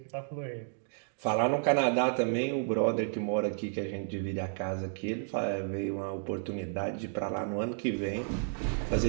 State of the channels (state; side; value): silent; left; digital silence